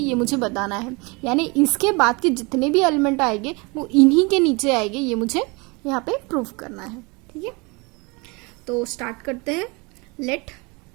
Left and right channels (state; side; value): quieter; left; 28.0 dB